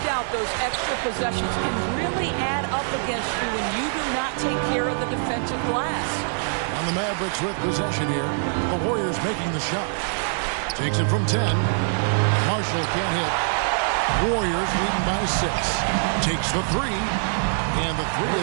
those extra possessions can really add up against you when you do not take care of the defensive glass. And the Mavericks with possession here. The Warriors making the shot. Takes it from 10. Marshall can't hit. Warriors leading by 6. Takes the 3. And the 3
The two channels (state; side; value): silent; left; digital silence